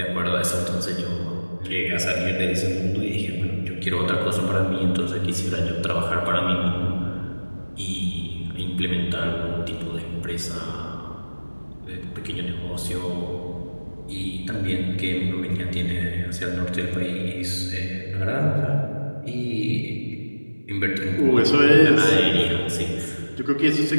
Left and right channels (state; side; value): inverted; both; correlation -1.00